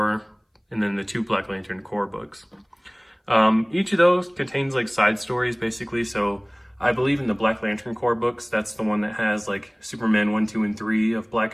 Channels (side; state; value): both; identical; correlation 1.00